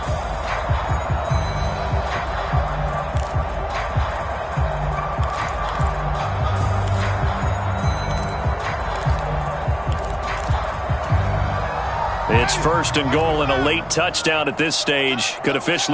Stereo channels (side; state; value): both; identical; correlation 1.00